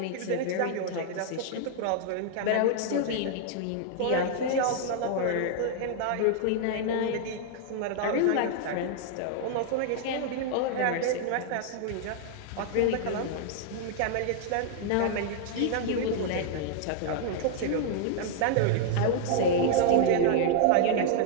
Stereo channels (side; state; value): both; different; correlation 0.00